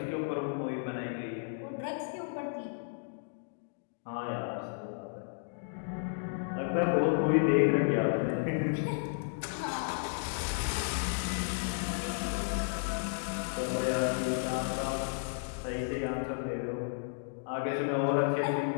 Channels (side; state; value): right; silent; digital silence